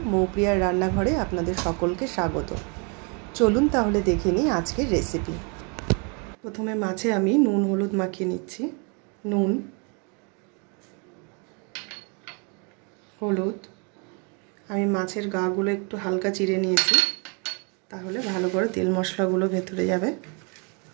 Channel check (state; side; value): quieter; left; 35.2 dB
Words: मौप्रियार रान्नाघरे आपनादेर सकलके स्वागत। चलुन ताहले देखे निई आजकेर रेसिपि। प्रथमे माछे आमी नुन हलुद माखिए निচ্ছি। नुन हलुद आमी माछेर गागुलो एकटु हालका चिरे निয়েছি, ताहले भालो करे तेल मशलागुलो भेतरे जाबे।